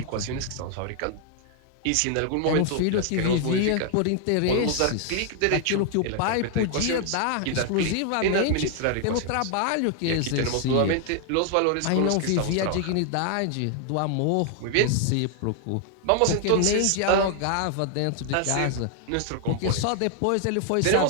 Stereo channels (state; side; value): different; both; correlation 0.00